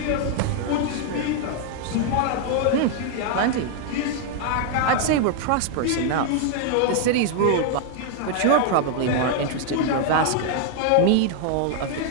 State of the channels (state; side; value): different; both; correlation 0.00